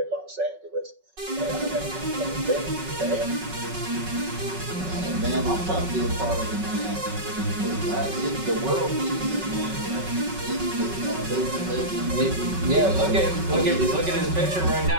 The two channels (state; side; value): late; left; 5.4 ms